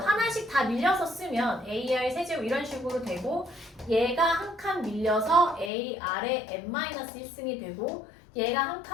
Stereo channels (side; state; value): right; drops out; at 5.7 s